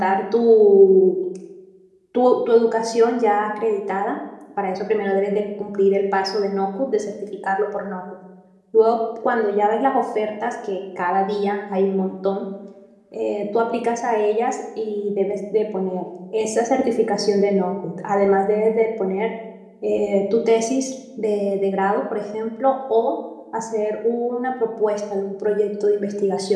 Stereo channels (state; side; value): identical; both; correlation 1.00